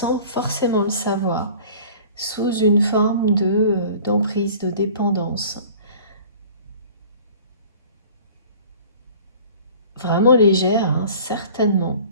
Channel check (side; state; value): both; inverted; correlation -0.46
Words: forcément le savoir, sous une forme d'emprise, de dépendance. Vraiment légère, hein, certainement,